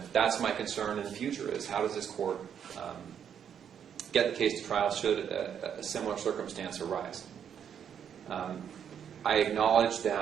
that's my concern in the future, is how does this court get the case to trial should a similar circumstance arise. I acknowledge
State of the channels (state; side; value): quieter; left; 8.4 dB